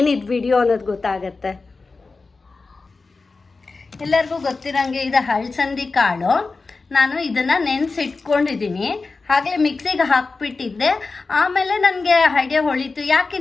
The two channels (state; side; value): quieter; right; 4.0 dB